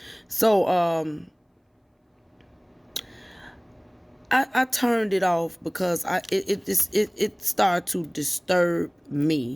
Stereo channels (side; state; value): both; identical; correlation 1.00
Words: So, I turned it off because it started to disturb